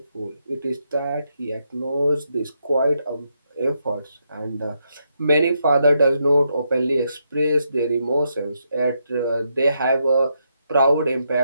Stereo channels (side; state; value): both; inverted; correlation -0.80